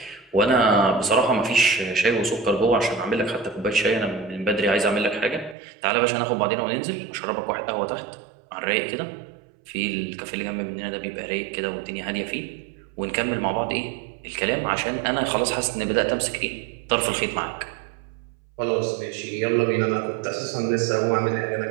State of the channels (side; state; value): left; drops out; at 5.6 s